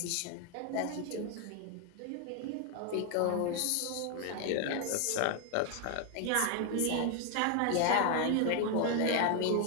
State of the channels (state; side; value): different; both; correlation 0.01